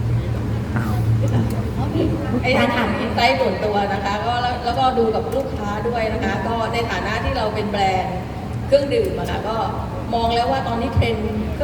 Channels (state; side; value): identical; both; correlation 1.00